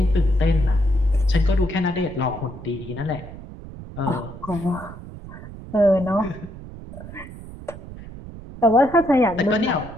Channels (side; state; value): right; noise; rumble, 14 dB below the sound